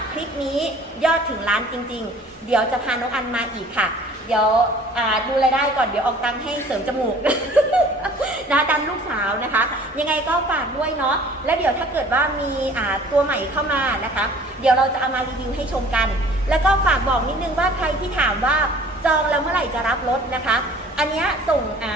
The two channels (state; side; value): normal; both; correlation 0.50